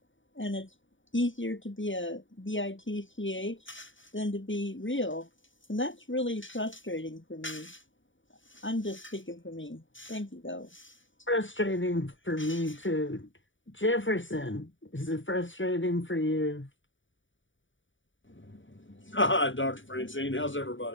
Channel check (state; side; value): late; right; 0.56 ms